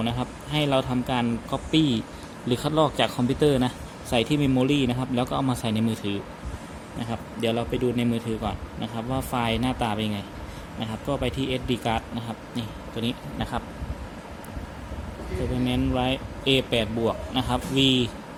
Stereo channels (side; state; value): both; identical; correlation 1.00